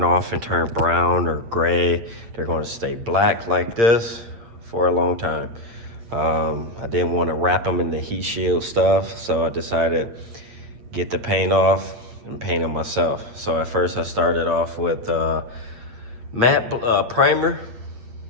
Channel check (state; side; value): late; left; 8.7 ms